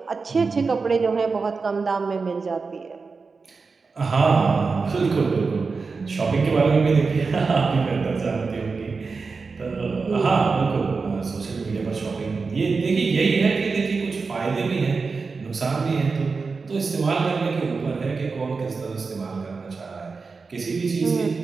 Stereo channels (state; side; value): quieter; left; 4.5 dB